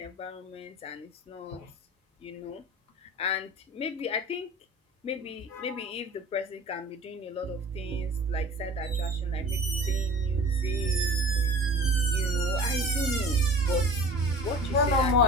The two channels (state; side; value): normal; both; correlation 0.41